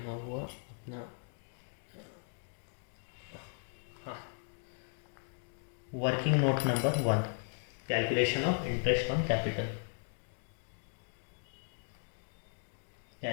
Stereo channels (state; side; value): silent; right; 53 dB below the other